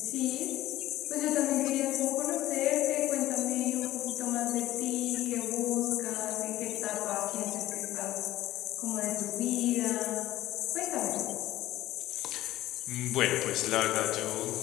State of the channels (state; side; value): quieter; right; 15.3 dB